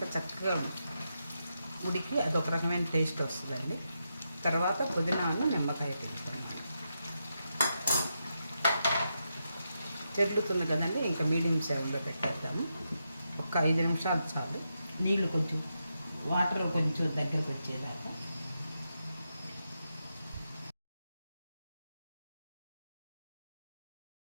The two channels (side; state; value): both; inverted; correlation -0.85